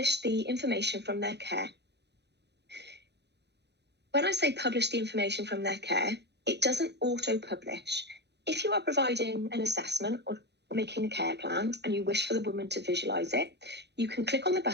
the information from their care. When I say publish the information from their care, it doesn't auto-publish. If you are providing an assessment or making a care plan and you wish for the woman to visualise it, you can click on the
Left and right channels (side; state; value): left; late; 0.50 ms